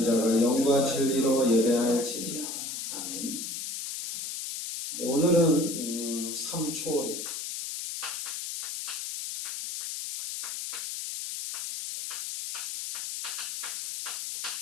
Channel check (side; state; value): left; noise; hiss, 5 dB below the sound